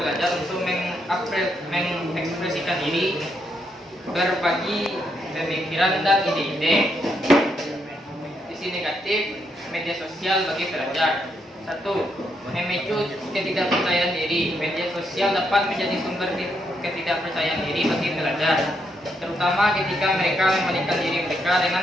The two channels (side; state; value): both; normal; correlation 0.78